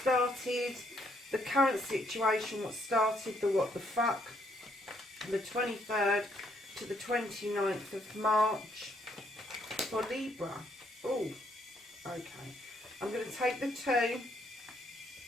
the current situation, what started the what the fuck, the 23rd to the 29th of March for Libra. Oh, okay. I'm going to take the two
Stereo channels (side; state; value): both; normal; correlation 0.71